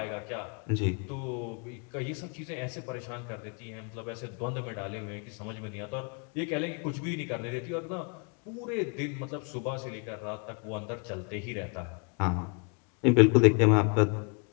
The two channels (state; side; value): quieter; right; 35.1 dB